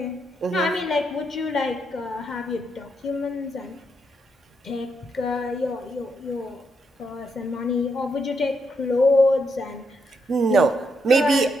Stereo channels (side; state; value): both; normal; correlation 0.79